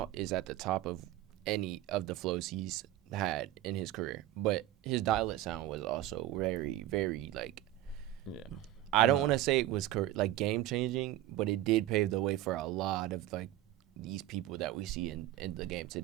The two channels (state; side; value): quieter; left; 14.3 dB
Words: is at the top of any of the flows he's had in his career. But his dialect sound was also very, very like Yeah. I don't want to say it was like game changing, but it did pave the way for a lot of like these people that we see in the game